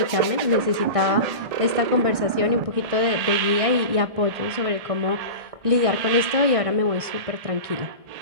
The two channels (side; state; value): left; late; 1.6 ms